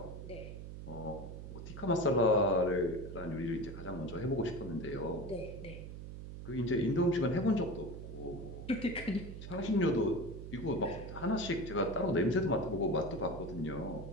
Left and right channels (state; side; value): noise; right; hum, 10 dB below the sound